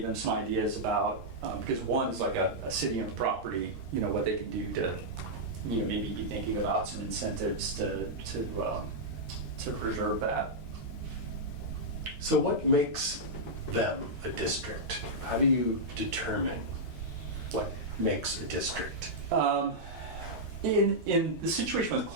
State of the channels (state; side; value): late; left; 13 ms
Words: some ideas about, because one is like a city-owned property, what they can do to, maybe be thinking about some incentives to preserve that. So what makes them a district? How do you determine what makes a district? In the situation with